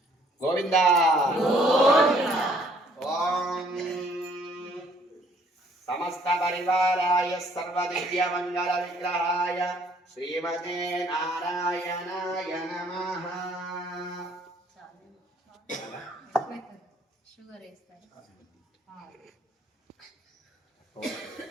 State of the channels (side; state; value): both; normal; correlation 0.62